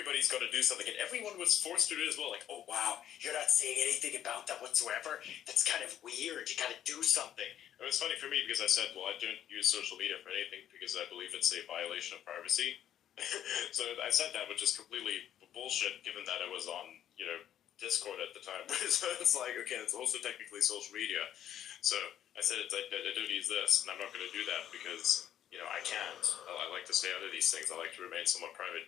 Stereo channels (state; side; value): quieter; right; 10.7 dB